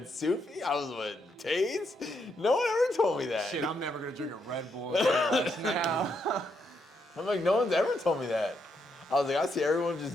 Sufi, I was with Taze. No one ever told me that. Shit, I'm never gonna drink a Red Bull now. I'm like, no one's ever told me that. I was like, I see everyone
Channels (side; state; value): both; normal; correlation 0.78